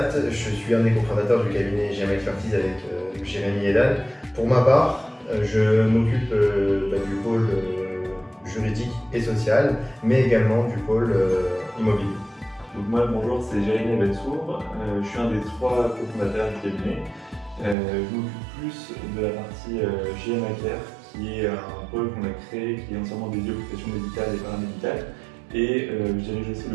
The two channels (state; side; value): drops out; left; at 17.8 s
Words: je suis un des cofondateurs du cabinet GM Expertise avec Jérémy et Dan. Pour ma part, je m'occupe du pôle juridique et social, mais également du pôle immobilier. Donc moi, bonjour, c'est Jérémy Bensour, je suis un des 3 cofondateurs du cabinet. Je m'occupe plus de la partie GM Care, qui est un pôle qu'on a créé, qui est entièrement dédié aux professions médicales et paramédicales. Et je dirige aussi